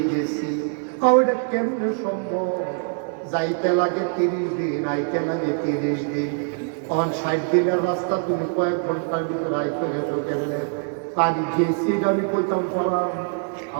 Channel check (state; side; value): silent; left; 57 dB below the other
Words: গেছি এটা কেমনে সম্ভব যাইতে লাগে 30 দিন আইতে লাগে 30 দিন 60 দিনের রাস্তা তুমি কয়েক ঘন্টার ভিতরে আইতে গেছো কেমনে পানি গেছি আমি কইতাম পালাম